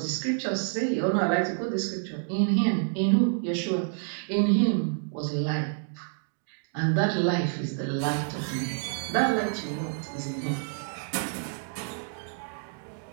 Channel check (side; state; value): left; silent; digital silence